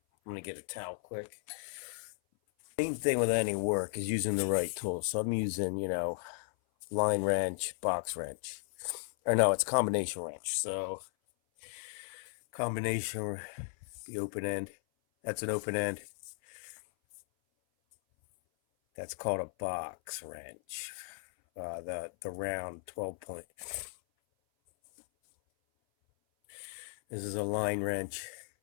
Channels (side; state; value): right; silent; 54 dB below the other